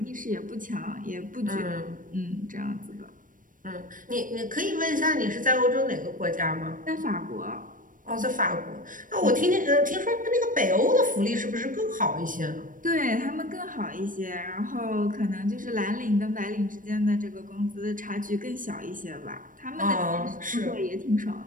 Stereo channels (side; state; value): left; late; 0.39 ms